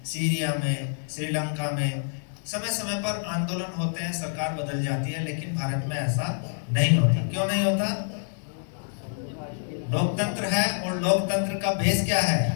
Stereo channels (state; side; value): silent; right; 59 dB below the other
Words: सीरिया में, श्रीलंका में समय समय पर आंदोलन होते हैं, सरकार बदल जाती है, लेकिन भारत में ऐसा नहीं होता। क्यों नहीं होता? लोकतंत्र है और लोकतंत्र का बेस क्या है?